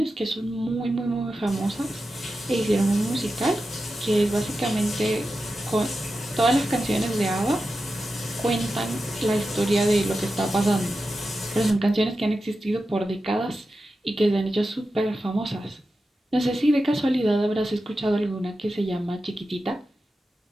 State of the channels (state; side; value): normal; both; correlation 0.91